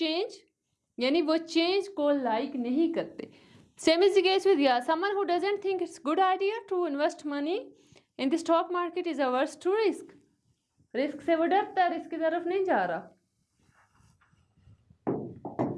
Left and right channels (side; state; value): both; identical; correlation 1.00